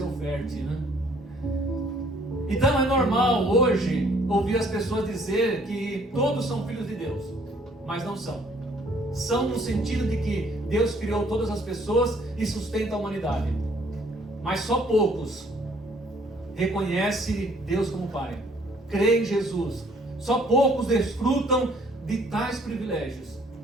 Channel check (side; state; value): both; normal; correlation 0.61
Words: oferte, né? Então é normal hoje ouvir as pessoas dizer que todos são filhos de Deus, mas não são. São no sentido de que Deus criou todas as pessoas e sustenta a humanidade, mas só poucos reconhecem Deus como Pai, creem em Jesus. Só poucos desfrutam de tais privilégios,